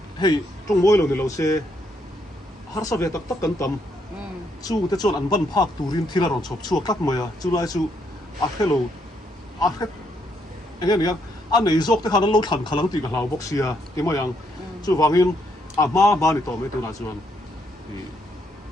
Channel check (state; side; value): normal; both; correlation 0.74